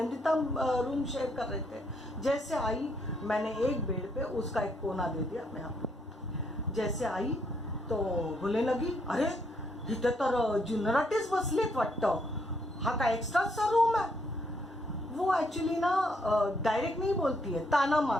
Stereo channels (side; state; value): both; normal; correlation 0.73